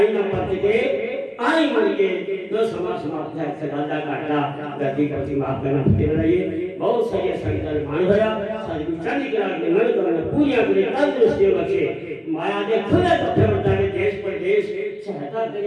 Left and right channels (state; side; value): identical; both; correlation 1.00